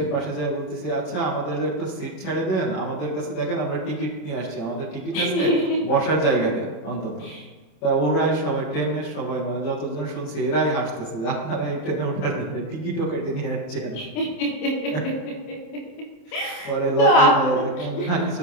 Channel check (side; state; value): right; late; 27 ms